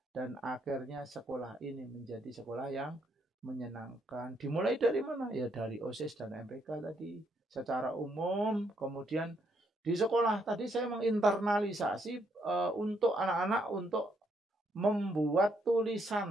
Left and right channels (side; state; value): both; normal; correlation 0.74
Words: dan akhirnya sekolah ini menjadi sekolah yang menyenangkan. Dimulai dari mana? Ya dari OSIS dan MPK tadi secara umum. Kemudian di sekolah tadi saya menginternalisasi untuk anak-anak untuk membuat